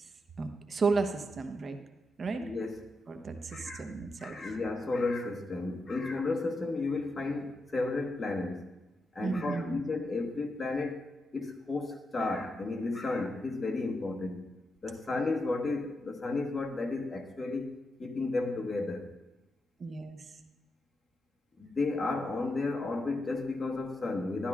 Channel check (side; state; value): both; normal; correlation 0.85